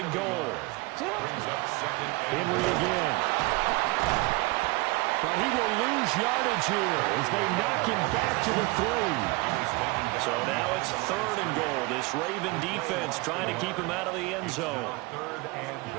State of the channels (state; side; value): quieter; left; 24.2 dB